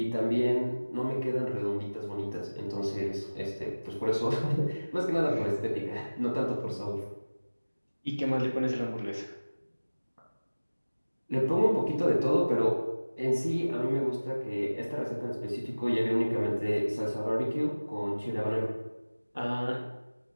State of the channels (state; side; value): inverted; both; correlation -1.00